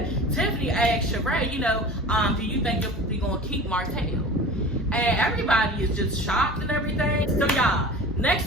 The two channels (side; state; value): both; normal; correlation 0.37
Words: Tiffany asked Sheree, you know, do you think you're going to keep Martell? And everybody is just shocked and everything. So y'all, next